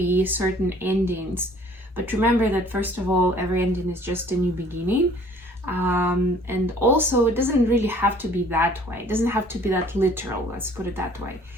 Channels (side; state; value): both; normal; correlation 0.55